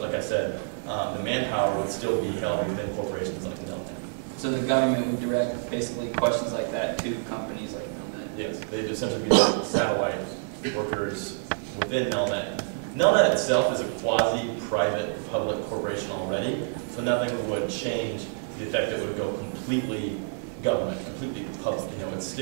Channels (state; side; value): silent; left; digital silence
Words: like I said, the manpower would still be held within corporations like Nelnet. So the government would direct basically questions like that to companies like Nelnet? Yes, they'd essentially be like satellite workers within Nelnet. Nelnet itself is a quasi-private public corporation already, so nothing would change to the effect that it would go completely government, completely public. You know, it